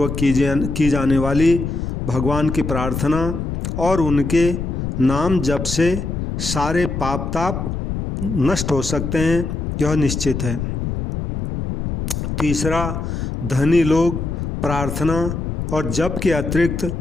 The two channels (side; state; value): left; noise; rumble, 4 dB below the sound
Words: की जाने वाली भगवान की प्रार्थना और उनके नाम जप से सारे पाप ताप नष्ट हो सकते हैं, यह निश्चित है। तीसरा, धनी लोग प्रार्थना और जप के अतिरिक्त